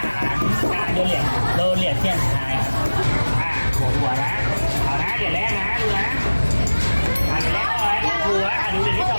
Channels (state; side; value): inverted; both; correlation -1.00